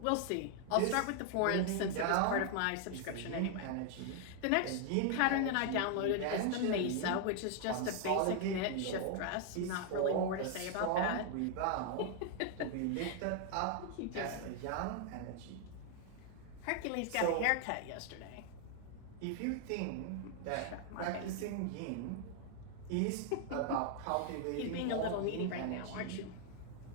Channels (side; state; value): both; different; correlation 0.00